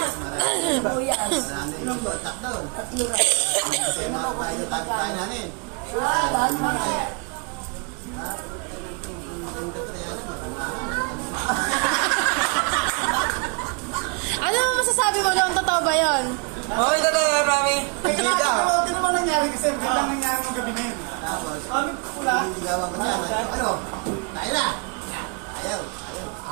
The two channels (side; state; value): left; quieter; 35.4 dB